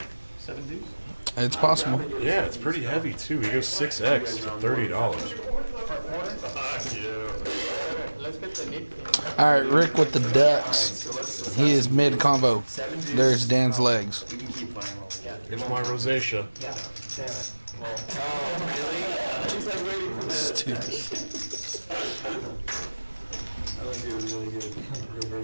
7 deuce? It's possible. Yeah, it's pretty heavy too. He goes 6x for $30. Let's get the nip. All right, Rick with the Ducks. He is mid combo. There's Dan's legs. Here's my rosacea. Stupid.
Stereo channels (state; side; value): inverted; both; correlation -1.00